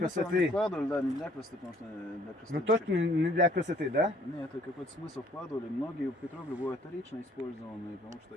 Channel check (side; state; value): both; normal; correlation 0.60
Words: Вкладывали, да, не для красоты, потому что для красоты. Ну точно не для красоты, да? Нет, это какой-то смысл вкладывали. Многие петроглифы бывают вторично использованные, потому что